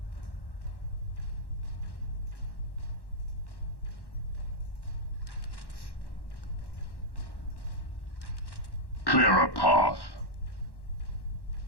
Clear a path.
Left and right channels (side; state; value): right; late; 1.1 ms